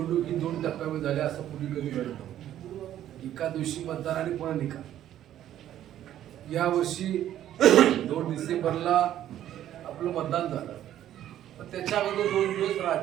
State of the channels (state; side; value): quieter; left; 11.8 dB